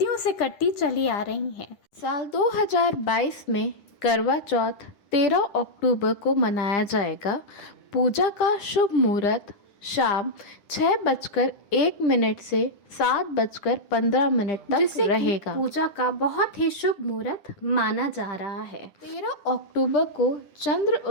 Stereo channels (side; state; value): right; late; 10 ms